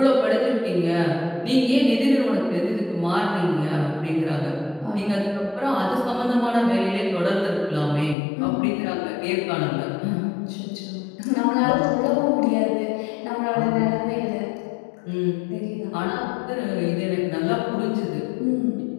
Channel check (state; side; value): drops out; right; at 8.2 s